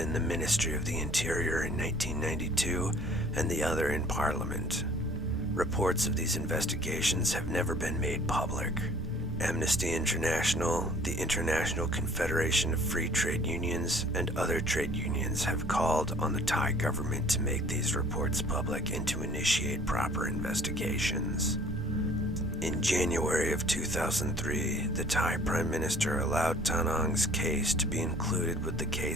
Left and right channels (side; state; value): both; normal; correlation 0.54